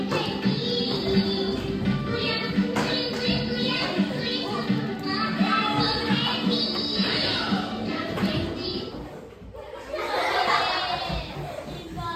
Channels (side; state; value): both; identical; correlation 1.00